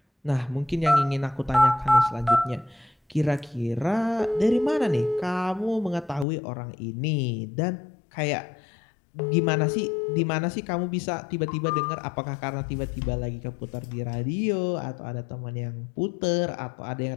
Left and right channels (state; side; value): drops out; right; at 6.2 s